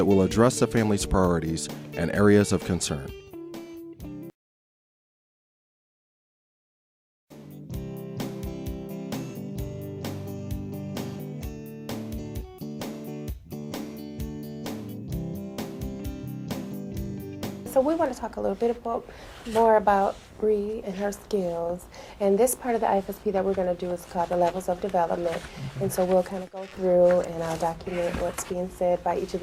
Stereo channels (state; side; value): identical; both; correlation 1.00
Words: will address the family's priorities and areas of concern. So we want to talk a little bit more about Bree and her skills. And this part of the IFSP that we're going to do is called the Levels of Development. And so we'll kind of go through and I'll document what's being said by each of